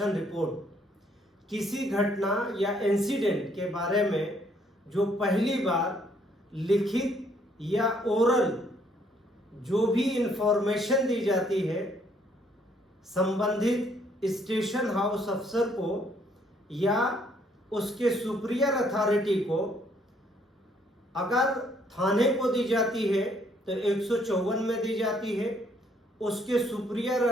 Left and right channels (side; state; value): both; normal; correlation 0.67